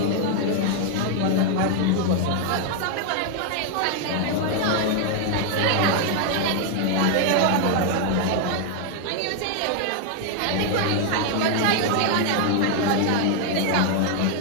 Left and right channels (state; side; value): different; both; correlation 0.00